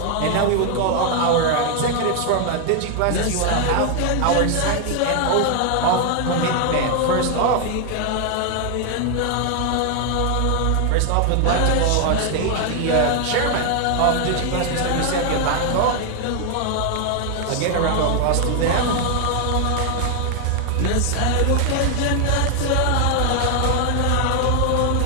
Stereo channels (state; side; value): different; both; correlation 0.00